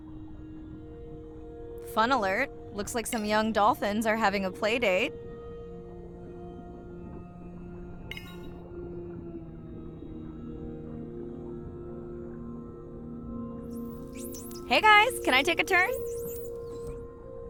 Fun alert. Looks like some young dolphins are having a play date. Hey guys, can I take a turn?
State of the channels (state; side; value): identical; both; correlation 1.00